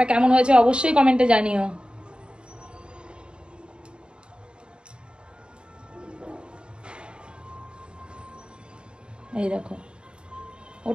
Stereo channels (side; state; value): left; late; 0.052 ms